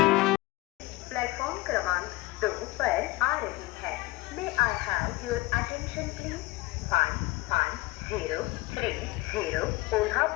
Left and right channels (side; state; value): right; quieter; 20.4 dB